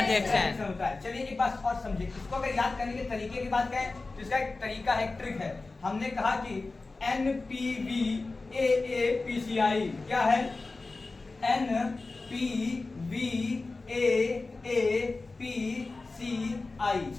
होता है। चलिए एक बात और समझिए, इसको अगर याद करने के तरीके की बात करें तो इसका एक तरीका है, एक ट्रिक है। हमने कहा कि NPVAAPCI क्या है? NPVAAPCI।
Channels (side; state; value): right; quieter; 3.5 dB